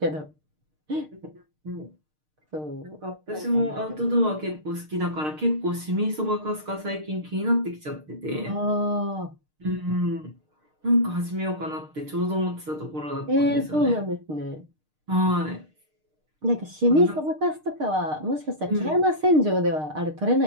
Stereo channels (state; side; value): late; left; 6.6 ms